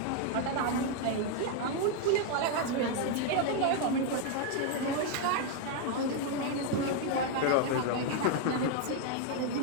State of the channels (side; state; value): both; different; correlation 0.01